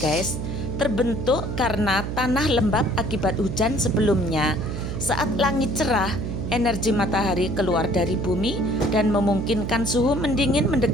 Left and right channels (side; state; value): right; noise; hum, 5 dB below the sound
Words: guys. Terbentuk karena tanah lembab akibat hujan sebelumnya. Saat langit cerah, energi matahari keluar dari bumi dan memungkinkan suhu mendingin